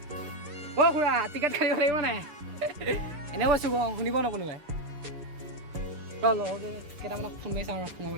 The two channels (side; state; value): left; late; 6.9 ms